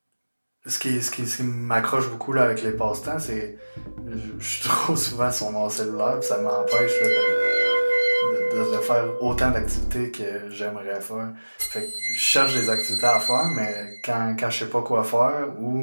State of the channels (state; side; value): inverted; both; correlation -1.00